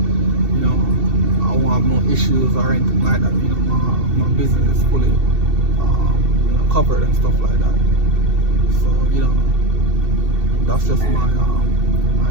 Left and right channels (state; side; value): late; left; 2.7 ms